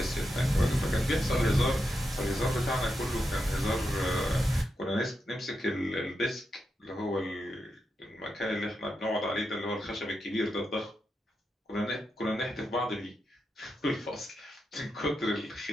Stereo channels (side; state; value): both; normal; correlation 0.86